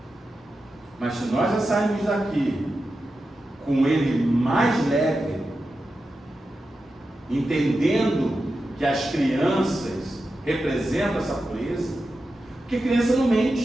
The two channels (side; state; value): both; normal; correlation 0.91